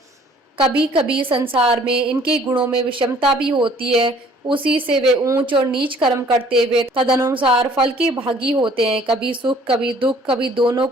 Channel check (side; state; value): both; normal; correlation 0.56